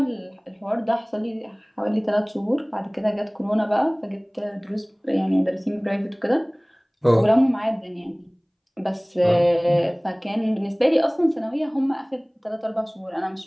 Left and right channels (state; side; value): identical; both; correlation 1.00